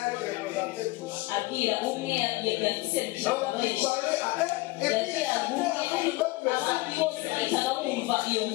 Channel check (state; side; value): quieter; right; 21.5 dB